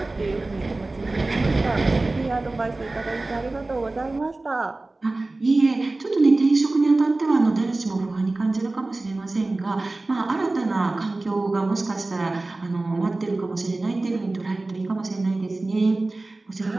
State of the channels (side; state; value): left; quieter; 3.1 dB